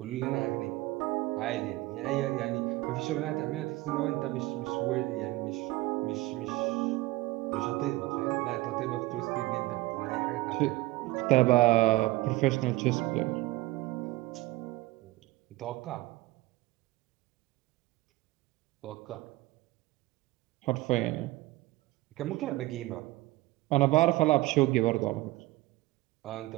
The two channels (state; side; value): quieter; left; 19.0 dB